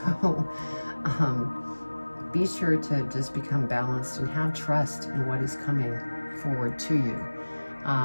be sure to just become balanced and have trust in what is coming forward to you.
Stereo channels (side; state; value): both; inverted; correlation -1.00